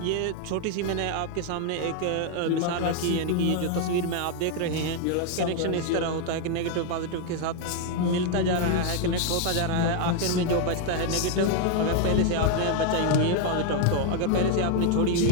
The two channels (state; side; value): different; both; correlation 0.01